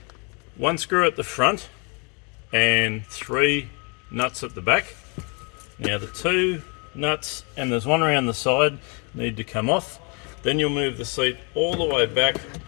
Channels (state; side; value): quieter; right; 34.1 dB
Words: one screw at the front and three nuts at the back. Now the two nuts, and there's one around the side, need to come off. Then you'll move the seat all the way back